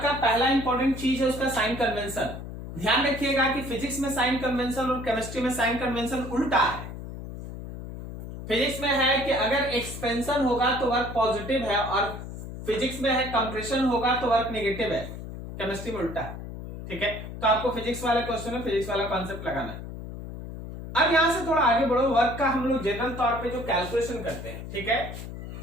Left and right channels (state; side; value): noise; left; hum, 10 dB below the sound